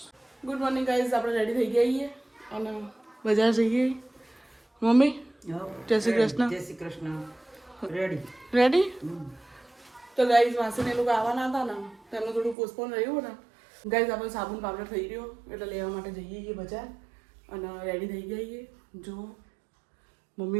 ગુડ મોર્નિંગ ગાઈસ, આપણે રેડી થઈ ગયા છીએ અને બજાર જઈએ. મમ્મી જય શ્રી કૃષ્ણ. જય શ્રી કૃષ્ણ. Ready ready. તો ગાઈસ માસીને એ લોકો આવવાના હતા ને, તેમનું થોડું પોસ્ટપોન રહ્યું ને. ગાઈસ આપણે સાબુન પાવડર થઈ રહ્યો એટલે લેવા માટે જઈએ છીએ બજાર અને રેડી થઈ ગયા છીએ. જો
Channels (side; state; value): left; drops out; at 12.6 s